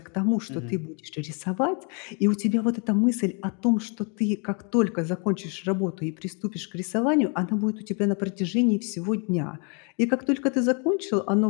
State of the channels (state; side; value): quieter; right; 37.0 dB